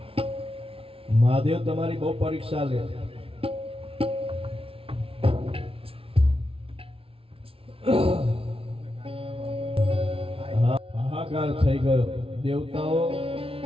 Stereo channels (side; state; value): left; late; 0.26 ms